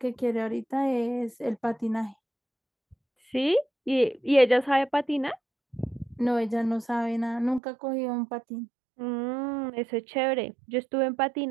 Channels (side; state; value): left; drops out; at 7.6 s